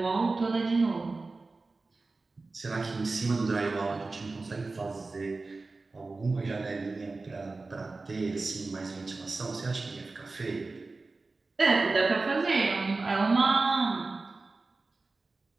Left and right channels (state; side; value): quieter; left; 3.6 dB